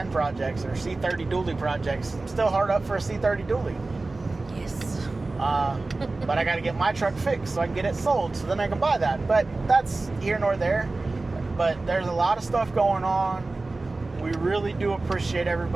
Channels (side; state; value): left; quieter; 3.3 dB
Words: projects, or C30 dually projects. I'm still hard up for a C30 dually. Yes. But I got to get my truck fixed so I can get it sold, so then I can buy that. But that's here nor there. But there's a lot of stuff going on. We really do appreciate